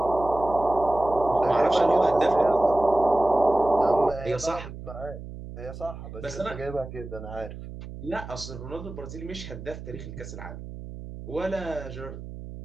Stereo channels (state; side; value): noise; right; hum, 12 dB below the sound